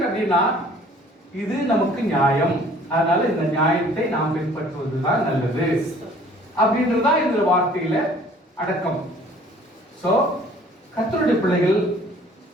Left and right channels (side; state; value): both; normal; correlation 0.53